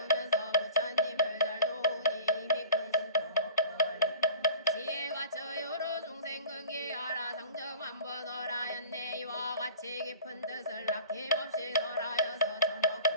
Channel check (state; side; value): inverted; both; correlation -0.43